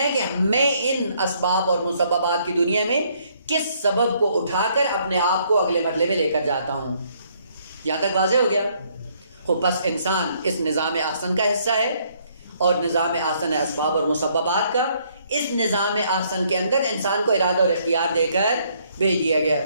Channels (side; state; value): both; inverted; correlation -0.68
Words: ہے کہ میں ان اسباب اور مسببات کی دنیا میں کس سبب کو اٹھا کر اپنے آپ کو اگلے مرحلے میں لے کر جاتا ہوں۔ یہاں تک واضح ہو گیا؟ بس انسان اس نظام احسن کا حصہ ہے، اور نظام احسن ہے اسباب اور مسببات کا۔ اس نظام احسن کے اندر انسان کو ارادہ اور اختیار دے کر بھیج دیا گیا،